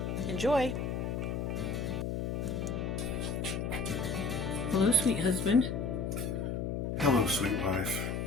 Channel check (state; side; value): noise; left; hum, 2 dB below the sound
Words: Enjoy! Hello, sweet husband. Hello, sweet wife.